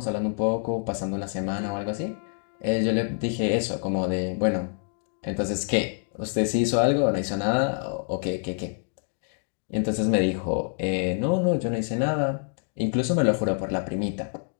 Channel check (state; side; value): silent; right; digital silence